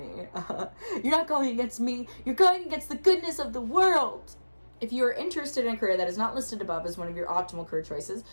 You're not going against me. You're going against the goodness of the world. If you are interested in a career that is not listed above as one of your optimal career choices,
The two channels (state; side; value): inverted; both; correlation -1.00